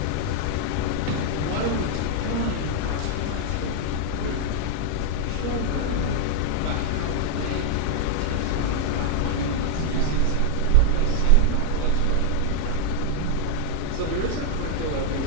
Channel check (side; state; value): both; different; correlation 0.00